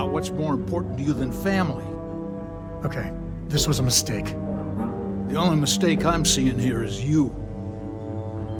what's more important to you than family. Okay, this was a mistake. The only mistake I'm seeing here is you.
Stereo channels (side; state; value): both; identical; correlation 1.00